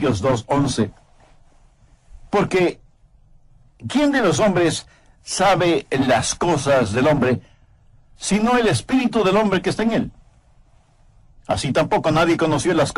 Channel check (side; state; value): both; identical; correlation 1.00